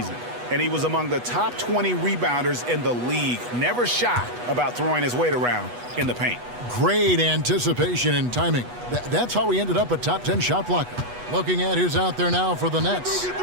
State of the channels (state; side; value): late; left; 8.2 ms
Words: and he was among the top 20 rebounders in the league. Never shy about throwing his weight around in the paint. Great anticipation and timing. That's how he ended up a top 10 shot blocker. Looking at who's out there now for the Nets.